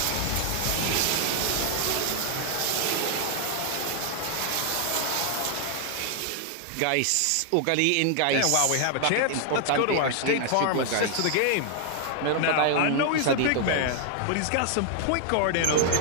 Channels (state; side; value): different; both; correlation 0.00